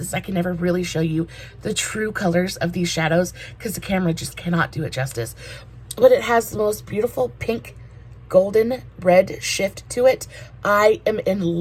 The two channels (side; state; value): both; identical; correlation 1.00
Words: I can never really show you the true colors of these shadows because the camera just cannot do it justice. But it has the most beautiful pink golden red shift to it. I am in